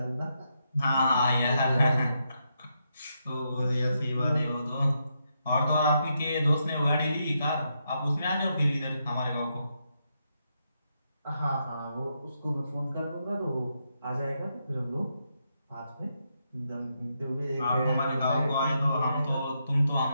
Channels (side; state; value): both; inverted; correlation -0.81